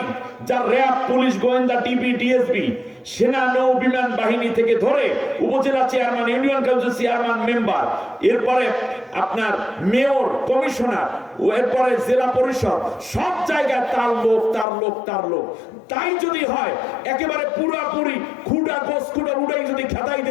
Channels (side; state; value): right; drops out; at 14.7 s